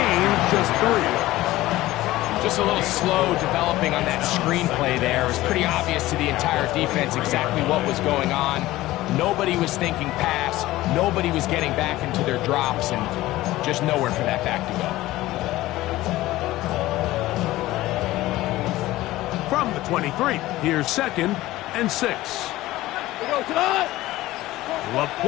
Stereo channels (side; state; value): right; quieter; 16.9 dB